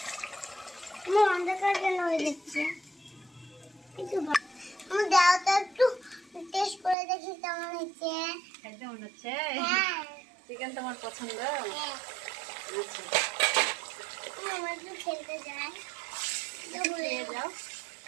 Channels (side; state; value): left; drops out; at 7.0 s